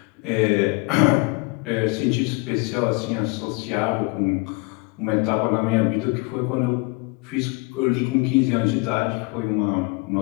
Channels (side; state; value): right; quieter; 27.8 dB